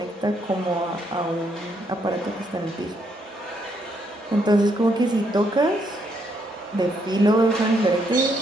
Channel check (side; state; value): both; normal; correlation 0.74